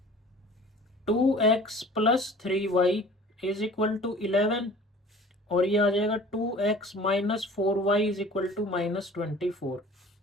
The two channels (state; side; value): normal; both; correlation 0.46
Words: 2x plus 3y is equal to 11, और ये आ जाएगा 2x minus 4y is equal to -24,